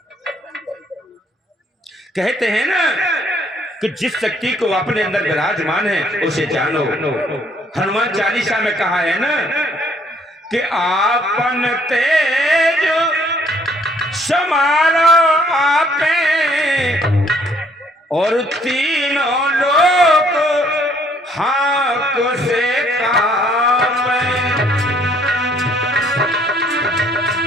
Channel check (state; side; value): normal; both; correlation 0.64